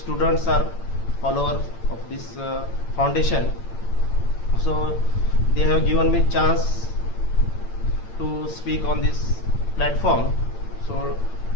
are followers of this foundation. So they have given me chance to speak on this platform. So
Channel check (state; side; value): late; right; 8.8 ms